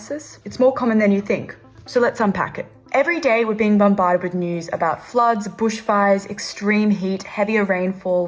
It's more common than you think, so let's unpack it. Every day we're being bombarded with news about floods, bushfires, extreme heat, heavier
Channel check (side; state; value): both; identical; correlation 1.00